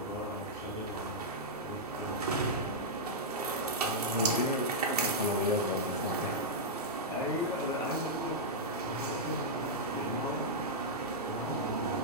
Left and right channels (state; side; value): normal; both; correlation -0.08